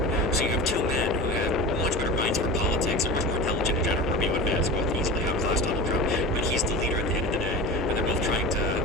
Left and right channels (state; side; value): normal; both; correlation 0.31